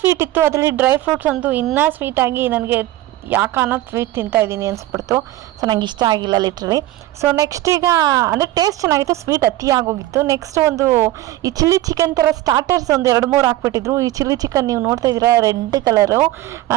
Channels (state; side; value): quieter; left; 15.6 dB